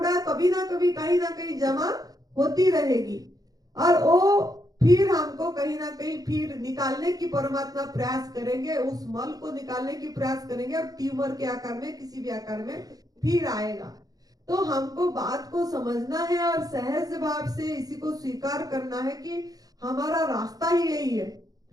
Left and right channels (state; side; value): late; left; 0.18 ms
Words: कभी ना कभी कहीं ना कहीं जमा होती रहेगी, और वो फिर हमको कहीं ना कहीं फिर निकालने की परमात्मा प्रयास करेंगे, उस मल को निकालने की प्रयास करेंगे, और ट्यूमर के आकार में, किसी भी आकार में फिर आएगा। तो हमको बात को समझना है और सहज भाव से इसी को स्वीकार करना है कि हमारा रास्ता ही यही है।